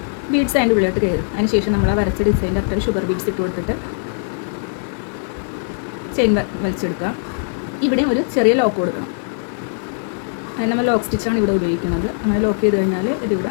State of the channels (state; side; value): silent; right; digital silence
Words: ബീഡ്സ് അതിൻ്റെ ഉള്ളിലോട്ട് കയറും. അതിന് ശേഷം നമ്മൾ ആ വരച്ച ഡിസൈൻ്റെ അത്ര ഷുഗർ ബീഡ്സ് ഇട്ട് കൊടുത്തിട്ട് ചെയിൻ വലിച്ചെടുക്കുക. ഇവിടെ ഒരു ചെറിയ ലോക്ക് കൊടുക്കണം. അതിന് നമ്മൾ ലോക്ക് സ്റ്റിച്ചാണ് ഇവിടെ ഉപയോഗിക്കുന്നത്. അങ്ങനെ ലോക്ക് ചെയ്ത് കഴിഞ്ഞാൽ